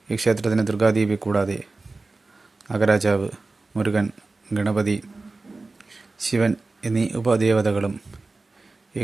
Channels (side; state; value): left; quieter; 3.5 dB